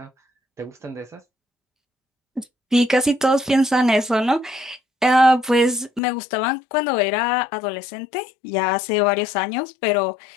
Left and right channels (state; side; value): drops out; right; at 6.0 s